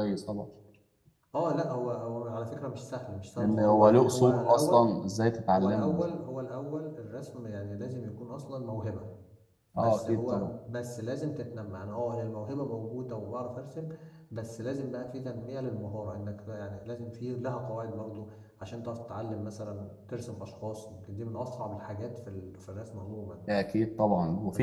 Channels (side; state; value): both; identical; correlation 1.00